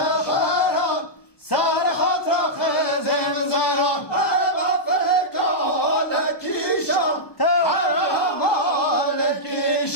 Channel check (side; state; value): right; late; 1.1 ms